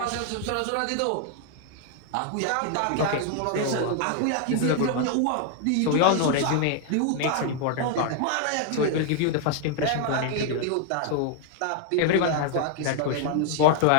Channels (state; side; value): different; both; correlation 0.00